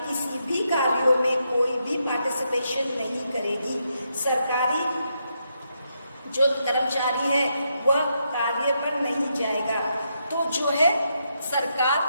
किसी भी कार्यों में कोई भी पार्टिसिपेशन नहीं करेगी, सरकारी जो कर्मचारी है वह कार्य पर नहीं जाएगा, तो जो है सरकार,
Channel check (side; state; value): both; inverted; correlation -0.81